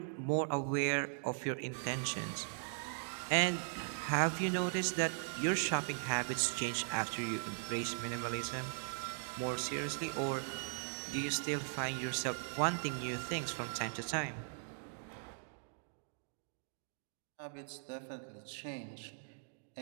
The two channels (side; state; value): left; silent; digital silence